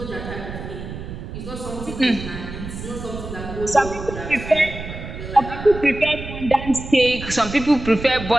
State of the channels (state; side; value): noise; right; rumble, 9 dB below the sound